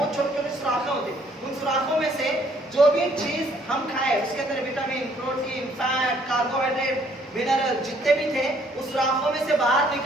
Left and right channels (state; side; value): normal; both; correlation 0.64